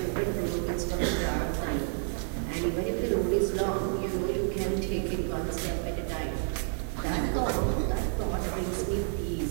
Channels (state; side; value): silent; left; 58 dB below the other